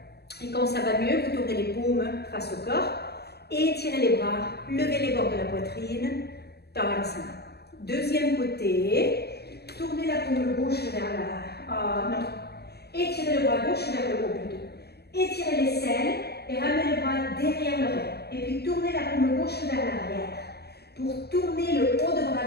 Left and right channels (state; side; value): late; right; 0.47 ms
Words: Et quand ça va mieux, vous tournez les paumes face au corps. Étirez les bras, levez les bords de la poitrine. Tadasana. Deuxième côté. Tournez la paume gauche vers la... non. Étirez le bras gauche vers le haut plutôt. Étirez l'aisselle et ramenez le bras derrière l'oreille. Et puis tournez la paume gauche vers l'arrière. Pour tourner le haut de